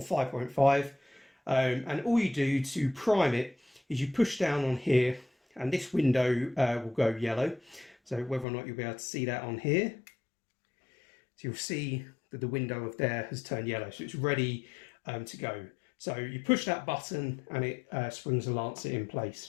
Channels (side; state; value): right; drops out; at 8.5 s